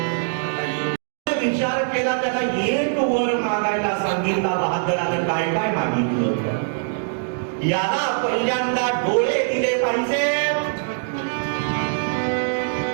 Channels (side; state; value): left; silent; digital silence